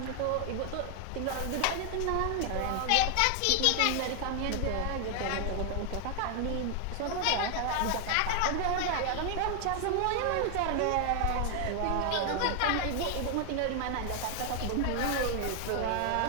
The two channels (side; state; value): both; different; correlation 0.00